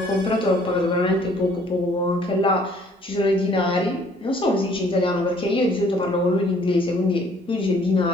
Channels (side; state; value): both; normal; correlation 0.59